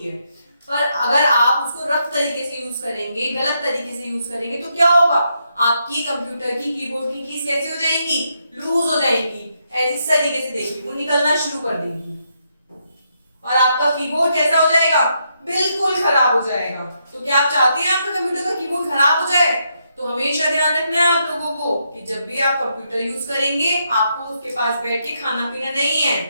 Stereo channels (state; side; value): inverted; both; correlation -0.79